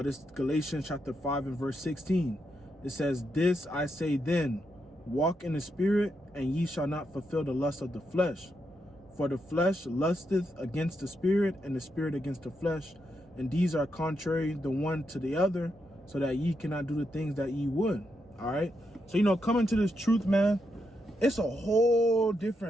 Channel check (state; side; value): normal; both; correlation 0.82